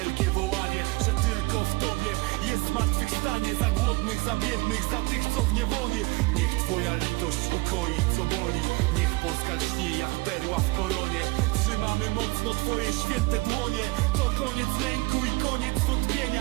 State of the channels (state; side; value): quieter; left; 23.8 dB